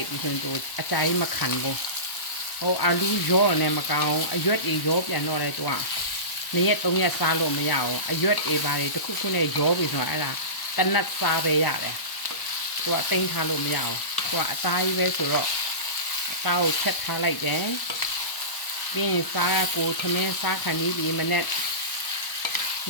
်ပြီးဆိုရင်အကြိုင်မခံဘူးဟိုအာလူရောနဲ့မကောင်းအရွက်တွေရောပြန်တော့လဲတော့2 ရက် 3 ရက်စားလို့မရအောင်အရွက်တွေပါတွေတစ်ခုနဲ့ရောပြီးဆိုတော့အဲ့ဒါတနတ်စားပဲရတယ်သူကတိမ့်ထားလို့မရအောင်သူကအသားကြီးပဲဆိုတော့အသားကိုချက်ထားလိုက်တယ်ပြီးရင်စားကိုသမင်းစားခံပြီးဒီမနေ့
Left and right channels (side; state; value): right; late; 1.1 ms